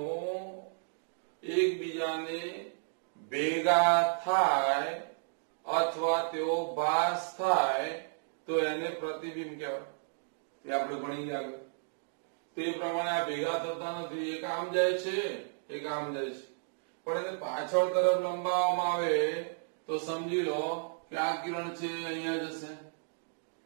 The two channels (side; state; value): left; silent; digital silence